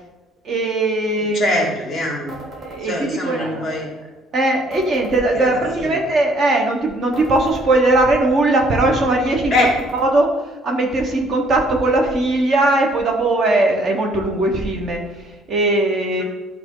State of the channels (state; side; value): normal; both; correlation 0.62